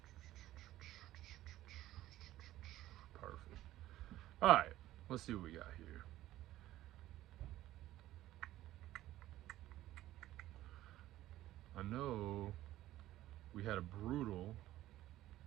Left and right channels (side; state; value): left; quieter; 14.7 dB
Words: Perfect. All right, let's see what we got here. I know we had a brutal